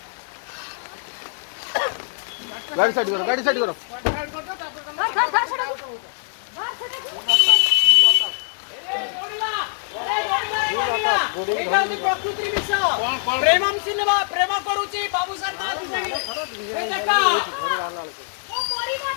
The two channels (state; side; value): silent; right; 63 dB below the other